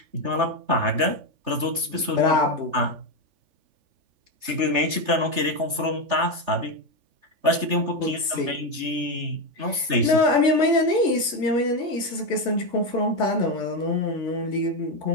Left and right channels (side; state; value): left; late; 3.3 ms